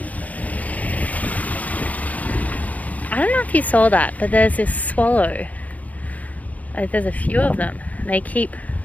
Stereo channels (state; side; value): late; right; 0.074 ms